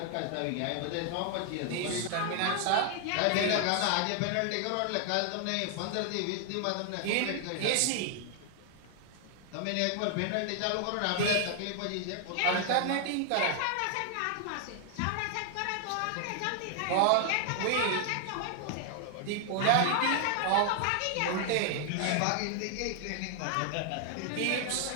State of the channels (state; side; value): different; both; correlation 0.00